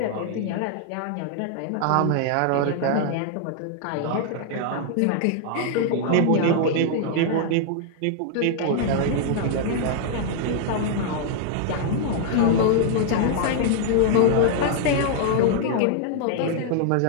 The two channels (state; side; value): different; both; correlation -0.01